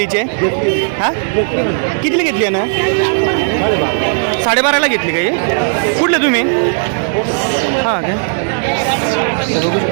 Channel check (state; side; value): silent; left; 67 dB below the other